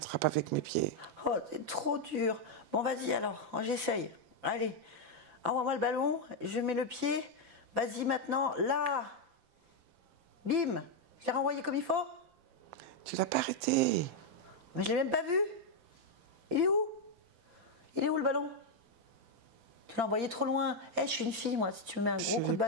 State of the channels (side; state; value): left; late; 5.9 ms